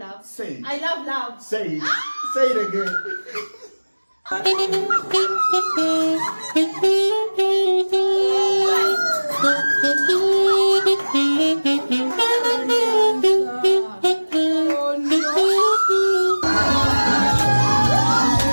Say it. I love love. Say it. Say it again.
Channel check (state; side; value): inverted; both; correlation -1.00